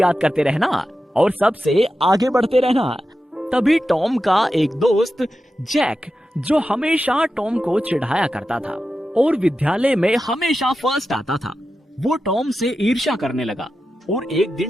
याद करते रहना और सबसे आगे बढ़ते रहना। तभी टॉम का एक दोस्त जैक, जो हमेशा टॉम को चिढ़ाया करता था और विद्यालय में हमेशा फर्स्ट आता था, वो टॉम से ईर्ष्या करने लगा और एक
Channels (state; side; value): normal; both; correlation 0.91